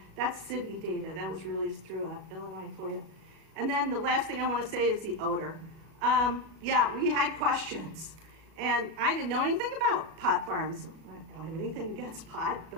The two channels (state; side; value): late; left; 36 ms